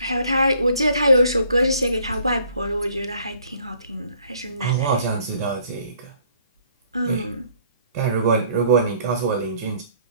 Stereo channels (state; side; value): inverted; both; correlation -0.61